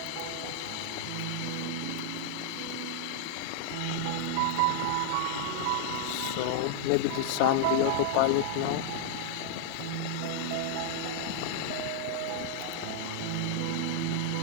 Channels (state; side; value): different; both; correlation -0.01